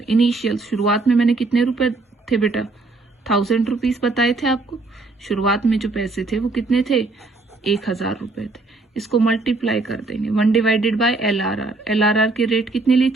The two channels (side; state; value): left; quieter; 3.4 dB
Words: इनिशियल शुरुआत में मैंने कितने रुपए थे बेटा, 1000 रुपीज बताए थे आपको। शुरुआत में जो पैसे थे वो कितने थे, 1000 रुपए थे। इसको मल्टीप्लाई कर देंगे 1 डिवाइडेड बाय LRR की रेट कितनी ली